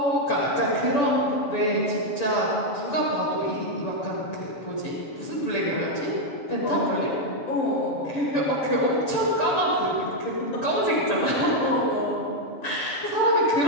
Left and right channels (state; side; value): late; right; 6.9 ms